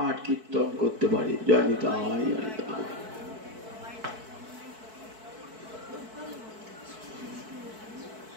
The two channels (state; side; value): late; left; 4.6 ms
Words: কীর্তন করতে পারে। জয় নিতাই, জয় নিতাই।